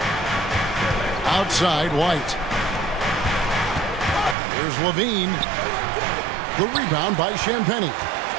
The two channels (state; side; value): drops out; left; at 4.4 s